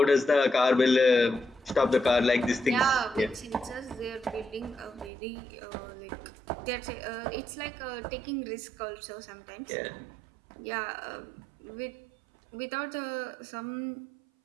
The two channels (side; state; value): left; drops out; at 5.1 s